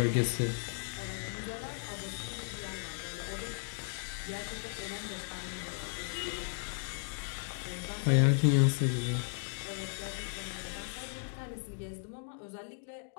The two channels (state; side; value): silent; right; 54 dB below the other